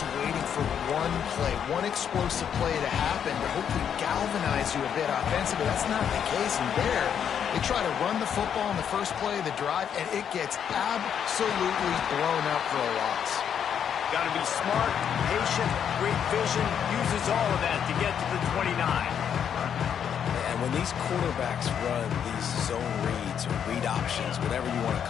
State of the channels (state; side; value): quieter; right; 8.3 dB